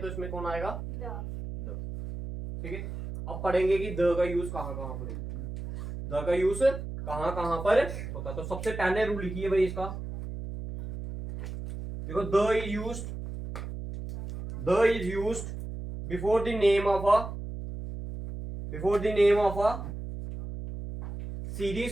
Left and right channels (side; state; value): right; noise; hum, 8 dB below the sound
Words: इसमें कौन आएगा? द। ठीक है, अब पढ़ेंगे कि द का यूज कहाँ कहाँ पर होता है, द का यूज कहाँ कहाँ पर होता है। तो सबसे पहले रूल लिखिए भाई इसका। देखो, the is used before the name of a